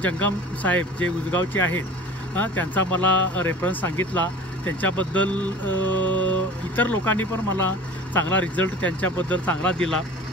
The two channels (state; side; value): normal; both; correlation 0.40